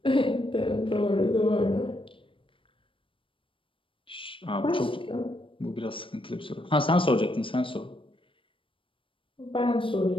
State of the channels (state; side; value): late; right; 0.25 ms